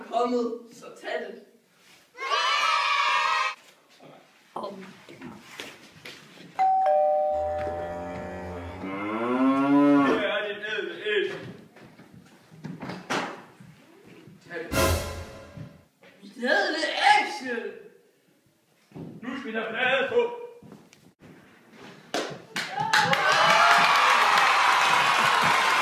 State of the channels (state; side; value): identical; both; correlation 1.00